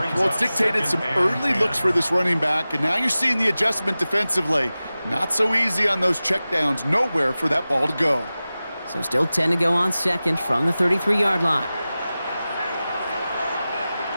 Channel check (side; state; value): both; inverted; correlation -0.96